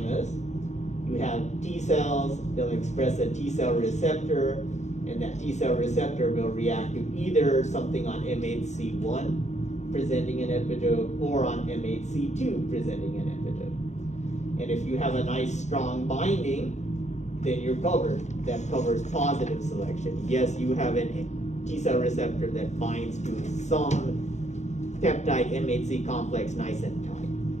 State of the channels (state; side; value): late; right; 0.34 ms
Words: You have T cells, they'll express a T cell receptor, and that T cell receptor will react to either something on MHC1 presenting an epitope or on MHC2 presenting an epitope. And if you have a nice strong binding, then you're covered. That covers positive selection. Yes, you have a T cell receptor that binds to some peptide MHC complex nice and tight.